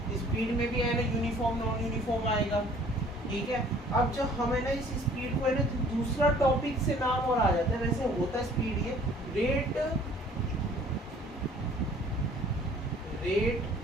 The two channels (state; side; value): normal; both; correlation 0.54